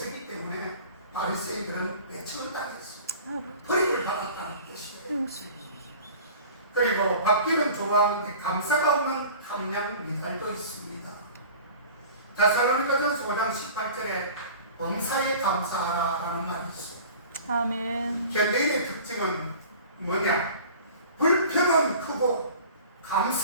때문에 바리새인들은 외침을 당했어. 버림을 받았다는 뜻이에요. 그리고 받기는 좋아하는데 감사가 없는 함량 미달도 있습니다. 데살로니가전서 5장 18절에 범사에 감사하라라는 말이 있어요. 아멘. 현대인의 특징은 뭐냐? 불평은 크고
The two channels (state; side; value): inverted; both; correlation -0.43